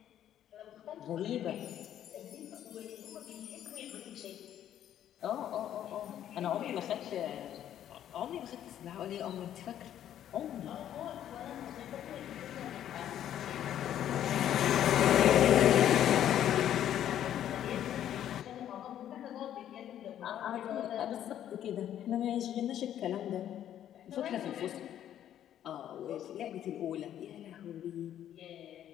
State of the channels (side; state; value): right; quieter; 10.9 dB